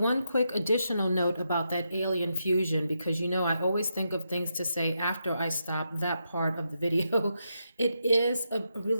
quick additional note about that Alien Fusion, because you know I always think of things to say after I stop that part of the video. It is a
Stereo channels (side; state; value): both; inverted; correlation -0.83